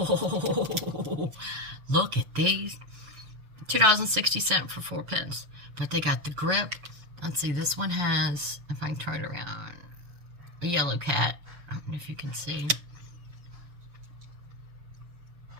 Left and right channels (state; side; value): late; left; 7.0 ms